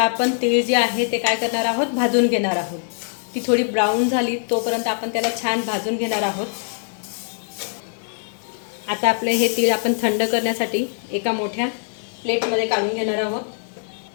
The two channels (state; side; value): silent; right; 64 dB below the other